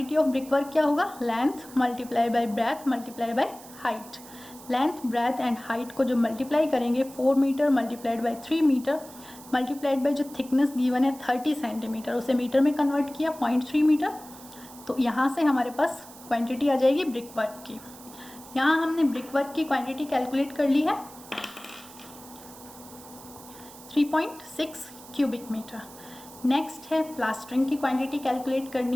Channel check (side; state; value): right; noise; hiss, 19 dB below the sound